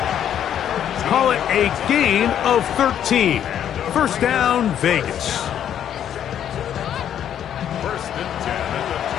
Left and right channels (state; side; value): quieter; right; 9.8 dB